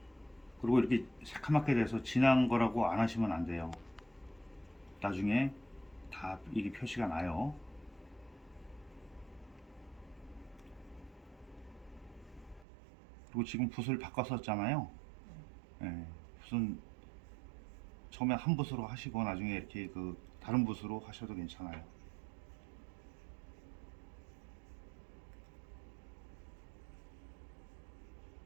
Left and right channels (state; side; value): drops out; left; at 12.7 s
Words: 그리고 이렇게 새카맣게 돼서 진한 거라고 안 하시면 안 돼요. 나중에 다 이게 표시가 나요. 그리고 지금 붓을 바꿨었잖아요. 네, 붓은 처음에 한 붓으로 하시고 나중에 이렇게 그 다른 붓으로 하셔도 괜찮아요.